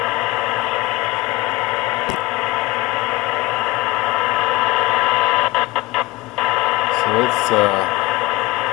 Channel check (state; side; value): quieter; right; 19.5 dB